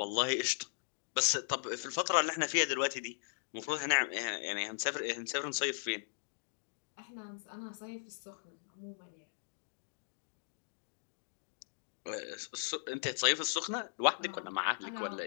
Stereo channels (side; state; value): right; silent; digital silence